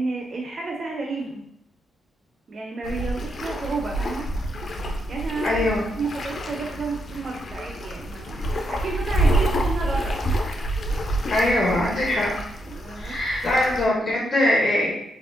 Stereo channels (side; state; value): both; normal; correlation 0.80